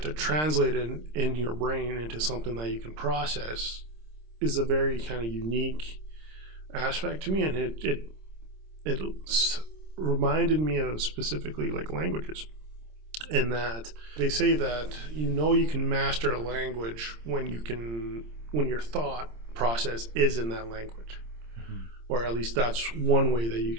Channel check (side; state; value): left; late; 26 ms